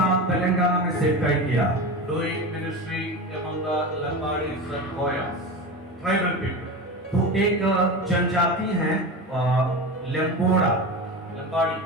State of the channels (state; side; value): normal; both; correlation 0.25